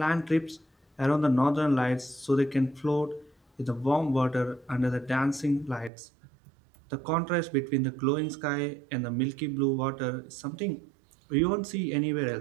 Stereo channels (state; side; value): drops out; left; at 5.9 s